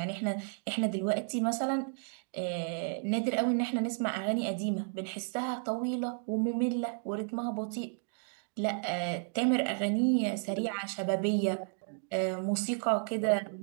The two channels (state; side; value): silent; left; 55 dB below the other